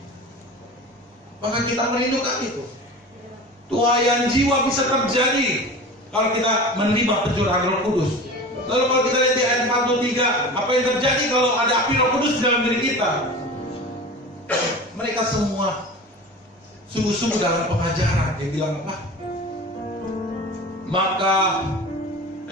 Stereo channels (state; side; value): normal; both; correlation 0.34